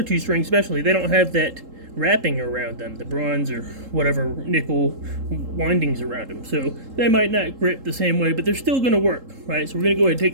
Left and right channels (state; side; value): late; left; 3.8 ms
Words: 2 strings especially, they don't have that wrapping around them, the bronze or whatever nickel windings around them, so they might not grip the same way, but they're still going to work, right? So we're going to go ahead and take